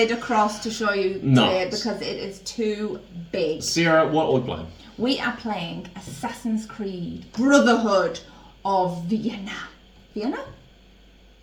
across to show you today because it is too big. Sarah, what are we playing? We are playing Assassin's Creed Brotherhood of Vienna. Vienna?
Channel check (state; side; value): identical; both; correlation 1.00